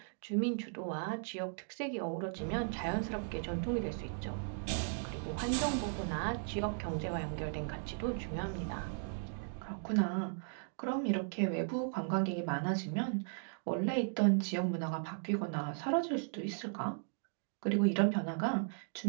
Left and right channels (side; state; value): left; silent; digital silence